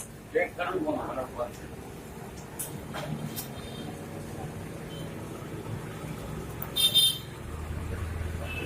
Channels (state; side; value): identical; both; correlation 1.00